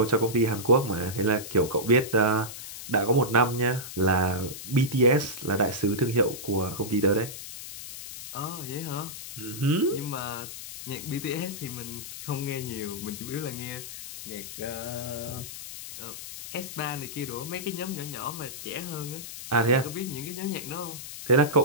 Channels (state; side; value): noise; left; hiss, 10 dB below the sound